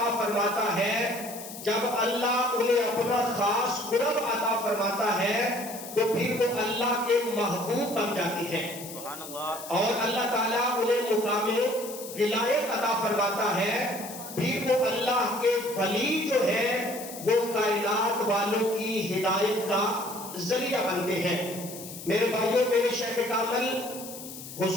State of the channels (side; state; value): left; noise; hiss, 12 dB below the sound